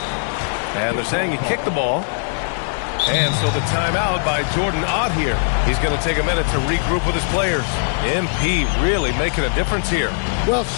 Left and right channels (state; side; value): silent; right; digital silence